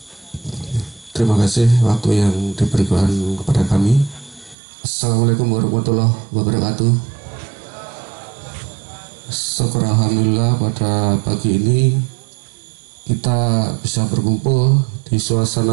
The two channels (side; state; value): left; drops out; at 4.5 s